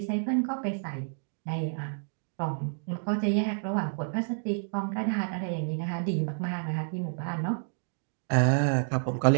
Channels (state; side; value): silent; left; digital silence